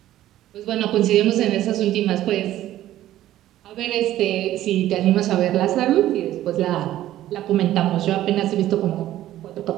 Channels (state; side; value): quieter; left; 13.6 dB